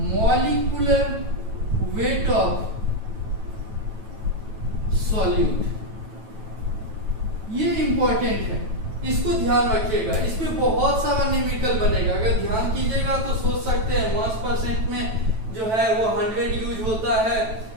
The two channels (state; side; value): late; left; 9.2 ms